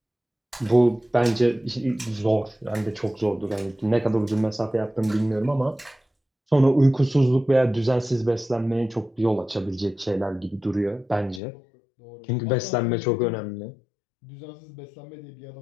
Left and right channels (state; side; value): drops out; right; at 11.4 s